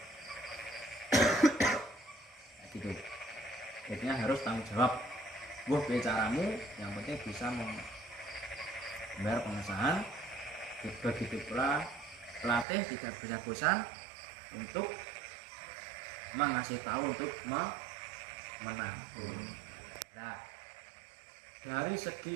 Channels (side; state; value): left; drops out; at 12.7 s